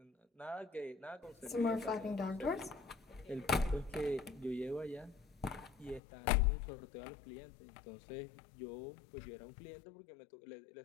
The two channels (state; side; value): drops out; right; at 6.0 s